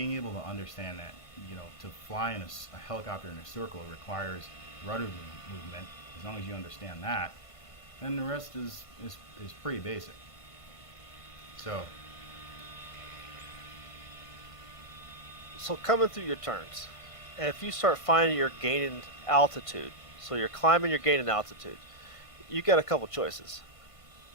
able to understand that, to fly in a helicopter in a circle requires rudder movement. As long as you understand that, then the rest is pretty basic. So Coming through your turns, if you start finding you're gaining altitude, so you're climbing, you're gaining altitude, you got a couple choices,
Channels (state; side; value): late; right; 1.5 ms